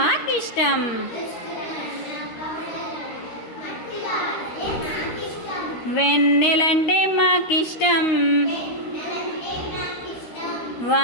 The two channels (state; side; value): late; right; 13 ms